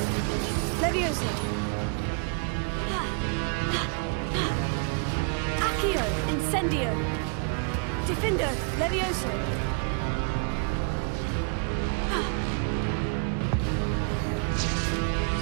Levioso. Accio. Incendio. Defendo. Levioso.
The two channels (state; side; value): quieter; left; 39.6 dB